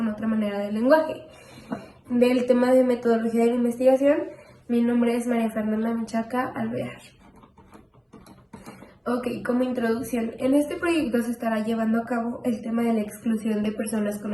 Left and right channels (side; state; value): both; identical; correlation 1.00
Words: otra manera de lenguaje. Del tema de metodología de la investigación, mi nombre es María Fernanda Menchaca Alvear. Ok, como introducción, en este proyecto se estará llevando a cabo el tema de la exclusión de personas con